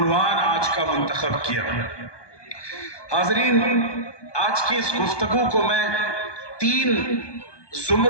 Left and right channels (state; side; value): late; right; 1.2 ms